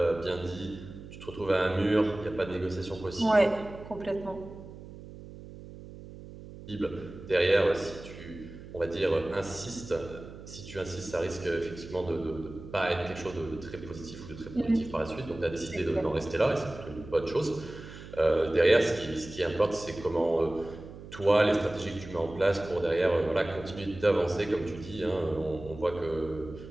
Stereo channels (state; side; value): noise; right; hum, 15 dB below the sound